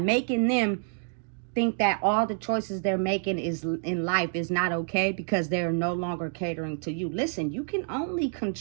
them think that all the choices they're making is in life is not okay because they're no longer catering to you. Listen, you can only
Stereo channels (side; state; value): left; silent; 59 dB below the other